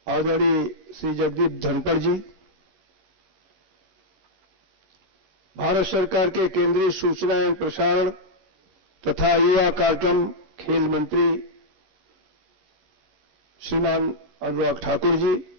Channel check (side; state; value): left; late; 19 ms